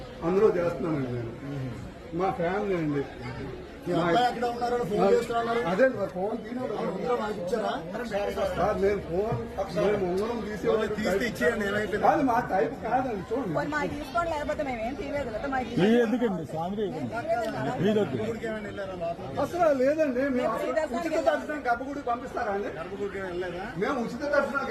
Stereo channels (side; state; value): both; identical; correlation 1.00